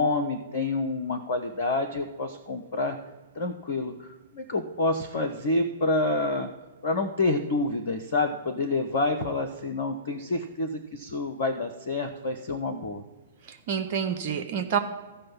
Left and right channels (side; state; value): both; inverted; correlation -0.34